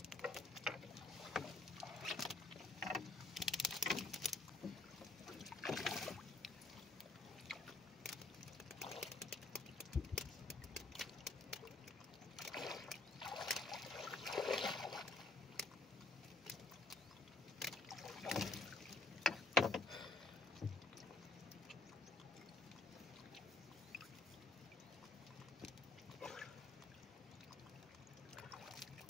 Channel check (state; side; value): quieter; right; 3.1 dB